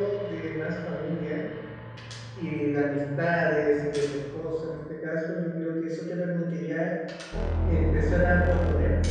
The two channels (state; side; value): identical; both; correlation 1.00